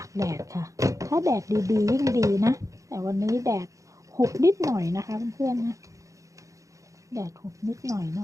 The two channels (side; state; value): left; late; 0.16 ms